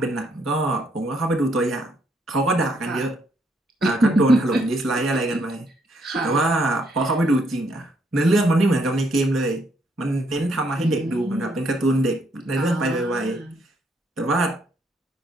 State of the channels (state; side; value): normal; both; correlation 0.72